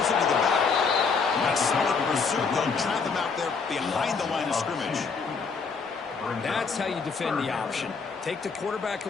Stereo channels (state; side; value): quieter; right; 5.1 dB